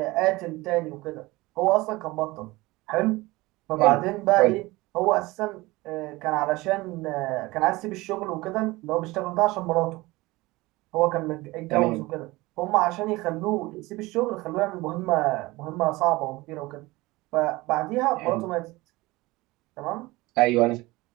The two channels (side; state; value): left; quieter; 20.9 dB